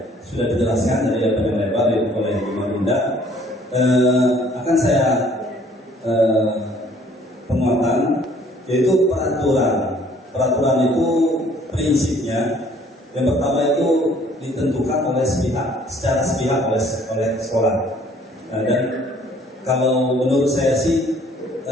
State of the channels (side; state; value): both; normal; correlation 0.58